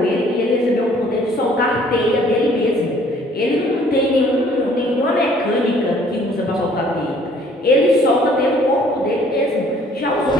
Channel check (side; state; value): both; normal; correlation 0.58